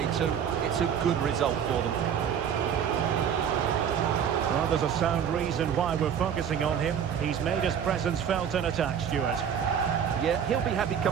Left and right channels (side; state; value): left; quieter; 8.2 dB